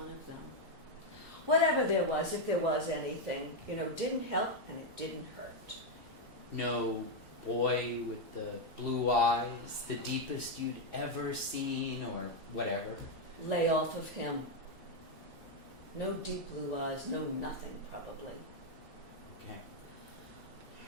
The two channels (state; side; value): normal; both; correlation 0.02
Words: of them. Whatever there was, if there was anything, didn't help and it didn't hurt. No boy with the blue eyes, the deepest you'd ever seen, or whatever. Lay off of him. No deep blue eyes, no nothing, probably. Okay.